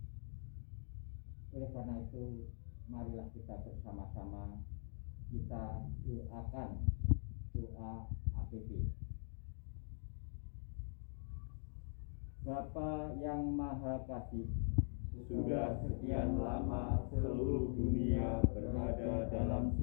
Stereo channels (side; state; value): right; silent; digital silence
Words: Oleh karena itu, marilah kita bersama-sama kita doakan doa APP. Bapa yang Maha Kasih, sudah sekian lama seluruh dunia berada dalam